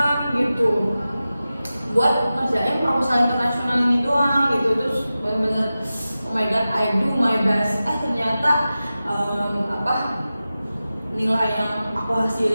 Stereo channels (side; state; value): both; inverted; correlation -0.94